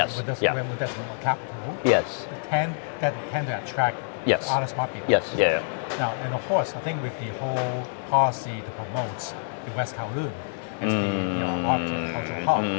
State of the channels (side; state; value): right; silent; digital silence